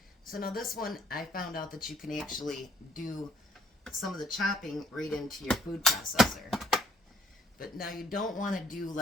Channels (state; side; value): normal; both; correlation 0.61